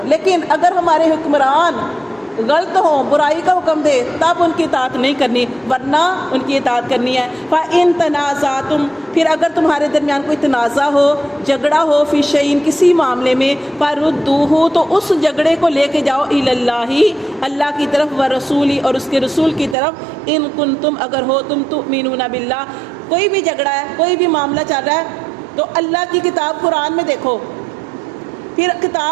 لیکن اگر ہمارے حکمران غلط ہوں، برائی کا حکم دے، تب ان کی اطاعت نہیں کرنی، ورنہ ان کی اطاعت کرنی ہے۔ فَإِن تَنَازَعْتُمْ، پھر اگر تمہارے درمیان کوئی تنازع ہو، جھگڑا ہو، فی شیء، کسی معاملے میں، فَرُدُّوهُ، تو اس جھگڑے کو لے کے جاؤ الی اللہ، اللہ کی طرف، ورسولی، اور اس کے رسول کی طرف، ان کنتم، اگر ہو تم تؤمنون باللہ۔ کوئی بھی جھگڑا ہے، کوئی بھی معاملہ چل رہا ہے تو اللہ کی کتاب قرآن میں دیکھو، پھر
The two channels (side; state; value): left; drops out; at 19.8 s